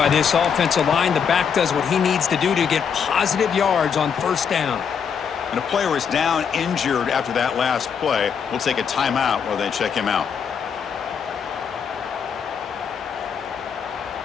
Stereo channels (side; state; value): right; quieter; 7.0 dB